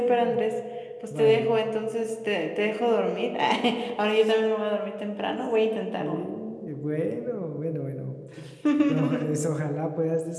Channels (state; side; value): identical; both; correlation 1.00